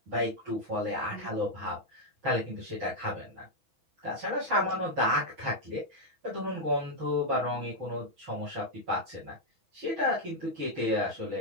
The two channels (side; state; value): left; late; 6.1 ms